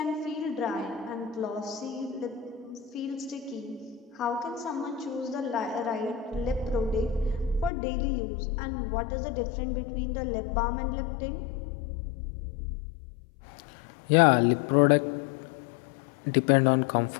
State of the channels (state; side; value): drops out; right; at 7.7 s